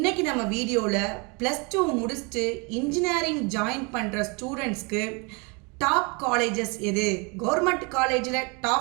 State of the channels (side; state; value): left; quieter; 30.7 dB